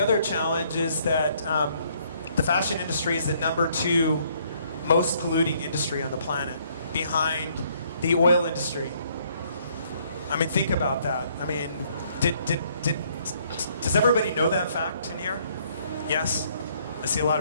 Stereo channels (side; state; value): both; inverted; correlation -0.66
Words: challenge is that the fashion industry is the #2 most polluting industry on the planet, behind the oil industry. I mean, think about that. I mean, does everybody know that fact in here? Yes? I see a lot